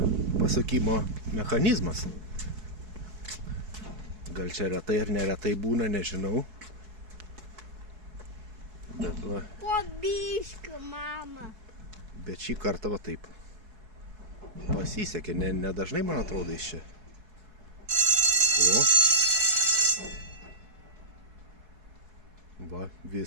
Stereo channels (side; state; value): left; late; 4.7 ms